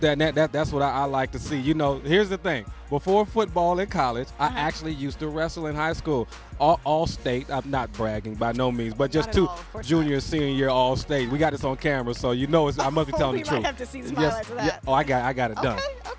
That's what I like to see. You know, here's the thing. Before football in college, I actually used to wrestle in high school. All state. I'm not bragging by no means, but just junior and senior year all state. We got this on camera, so you know I must be telling the truth. We might have to see some highlights of that. Yeah. Oh, I got it done.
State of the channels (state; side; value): identical; both; correlation 1.00